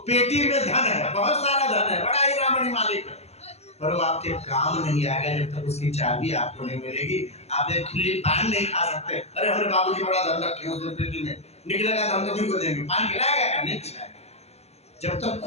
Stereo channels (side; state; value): right; late; 0.30 ms